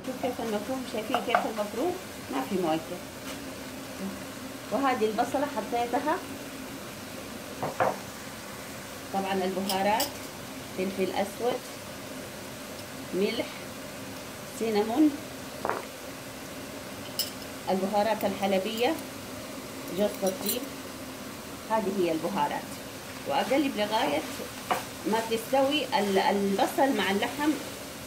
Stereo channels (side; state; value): both; identical; correlation 1.00